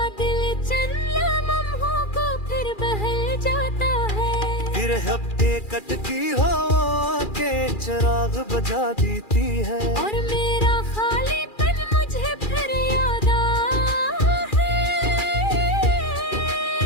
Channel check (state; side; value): late; right; 2.4 ms